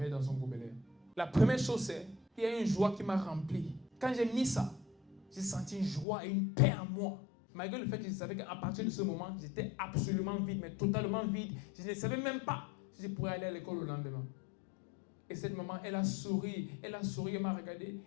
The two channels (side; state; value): right; drops out; at 6.1 s